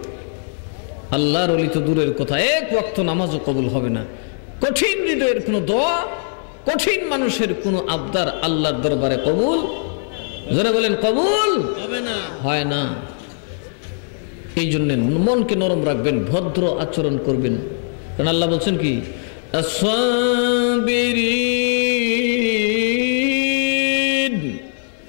আল্লাহর ওলি তো দূরের কথা, এক ওয়াক্ত নামাজও কবুল হবে না। কঠিন হৃদয়ের কোনো দোয়া, কঠিন মানুষের কোনো আবদার আল্লাহর দরবারে কবুল, যারা বলেন কবুল হবে না, হয় না। এই জন্য মনকে নরম রাখবেন, ভদ্র আচরণ করবেন। কারণ আল্লাহ বলছেন কি, আস-সাবিরিন,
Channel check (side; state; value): right; silent; 62 dB below the other